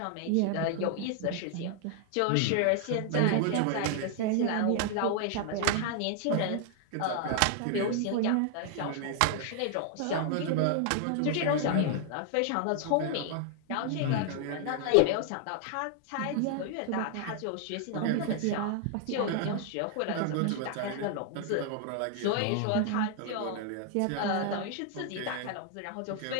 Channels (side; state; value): both; different; correlation 0.00